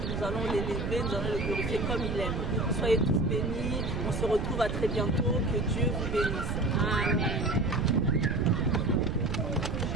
nous allons l'élever, nous allons le glorifier comme il aime. Soyez tous bénis, on se retrouve à très bientôt, que Dieu vous bénisse. Amen.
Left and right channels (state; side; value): noise; right; rumble, 2 dB below the sound